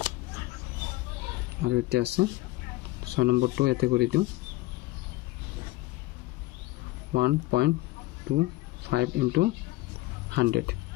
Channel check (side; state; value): right; quieter; 18.7 dB